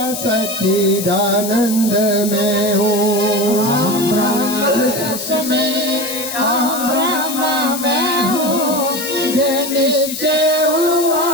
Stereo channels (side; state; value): left; noise; hiss, 7 dB below the sound